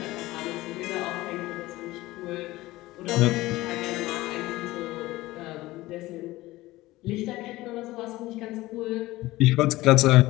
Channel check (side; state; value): right; quieter; 18.3 dB